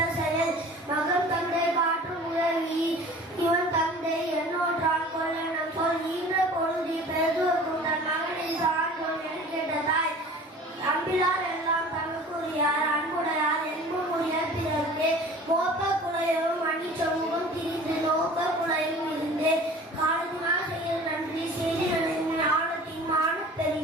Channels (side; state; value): both; normal; correlation 0.44